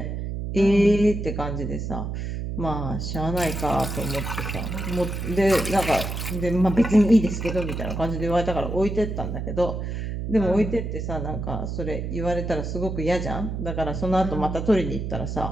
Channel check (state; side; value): noise; right; hum, 4 dB below the sound